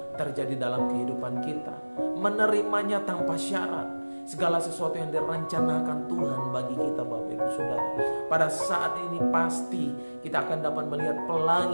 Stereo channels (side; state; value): both; inverted; correlation -1.00